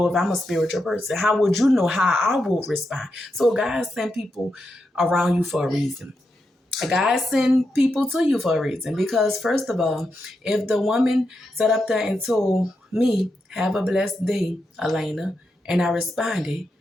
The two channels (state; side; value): normal; both; correlation 0.86